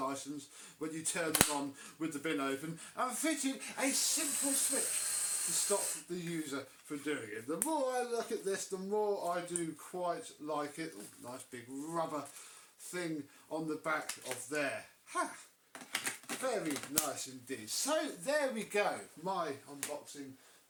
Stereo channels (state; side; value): identical; both; correlation 1.00